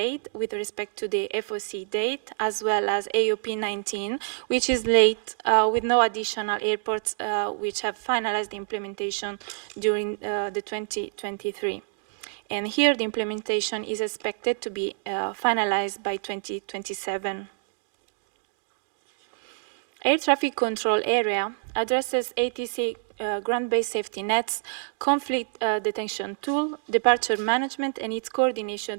with respect to the FOC date, as well as AOP 19, which is late with no additional airports which have finalized the implementation during the 2023. And here the implementation is expected to be finalized by 2027. Air traffic control area addresses ATC ground-based safety nets, conflict detection tool, departure management, and its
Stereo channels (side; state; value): left; silent; digital silence